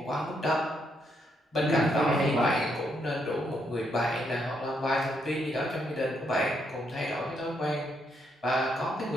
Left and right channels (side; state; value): both; normal; correlation 0.76